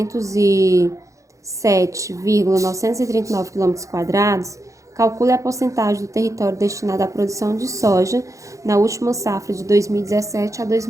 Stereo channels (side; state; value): left; late; 0.15 ms